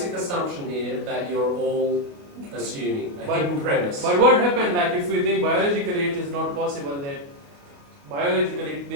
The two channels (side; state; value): left; late; 29 ms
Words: assumption here that you're all assuming a hidden premise. But what happened, like, if we think biologically it is not possible that biologically